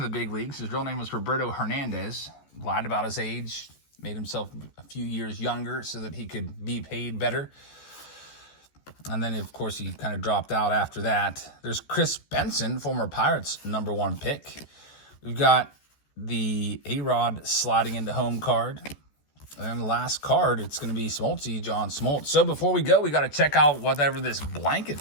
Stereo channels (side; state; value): right; late; 14 ms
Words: the big leagues. His real name was Roberto Hernandez. Lied about his age, made himself a few years younger so that he could be paid better. And then, of course, he kind of dropped out after that. There's Chris Benson, former Pirates #1 pick. We've got the A-Rod sliding into home card. And the last card, it's going to be Smoltzy, John Smoltz. So before we go, we got to check out whatever this blanket